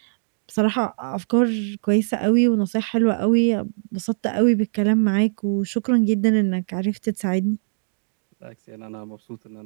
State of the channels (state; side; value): silent; left; digital silence